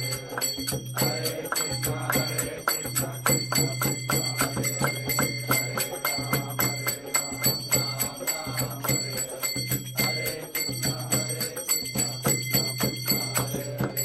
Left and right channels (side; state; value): left; noise; rumble, 26 dB below the sound